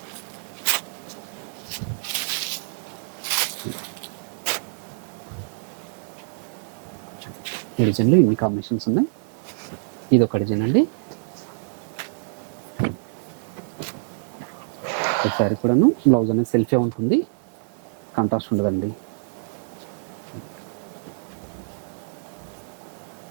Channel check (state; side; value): silent; left; digital silence